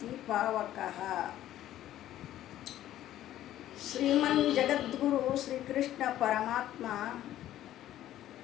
ಪಾವಕಃ. ಶ್ರೀಮನ್ ಜಗದ್ಗುರು ಶ್ರೀಕೃಷ್ಣ ಪರಮಾತ್ಮ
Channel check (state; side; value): quieter; right; 13.0 dB